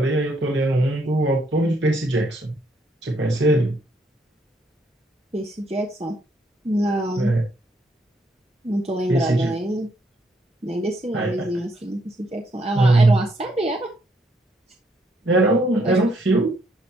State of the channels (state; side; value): normal; both; correlation 0.72